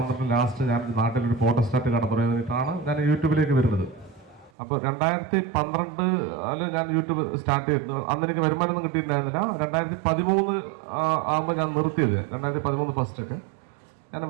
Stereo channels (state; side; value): drops out; left; at 4.5 s